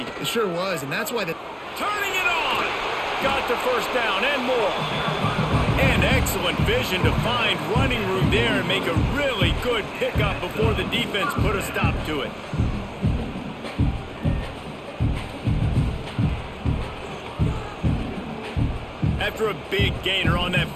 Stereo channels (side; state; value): both; identical; correlation 1.00